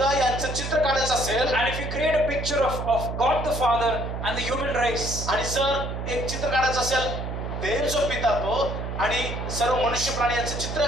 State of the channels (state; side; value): noise; right; hum, 5 dB below the sound